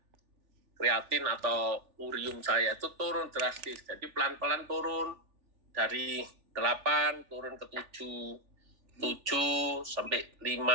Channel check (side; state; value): left; late; 3.4 ms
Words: Kreatin atau urium saya itu turun drastis. Jadi pelan-pelan turun dari 8 turun ke 7 sampai